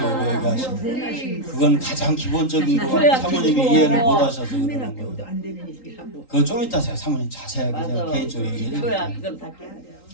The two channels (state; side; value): late; right; 3.8 ms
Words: 얘기하시고 우리 그건 가장 기본적인 거 기초야, 사모님이 기초. 이해를 못 하셔서 그러는 국민학교도 거예요. 안 되는 얘기하고. 그거 좀 이따 제가 사모님 자세하게 제가 맞아. 개인적으로 얘기해 기초야. 드릴게요. 그건 다 깨야 돼요.